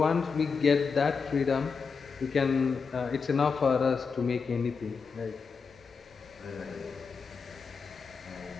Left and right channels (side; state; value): right; quieter; 5.3 dB